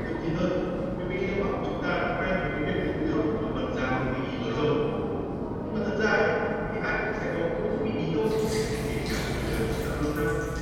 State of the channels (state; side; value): identical; both; correlation 1.00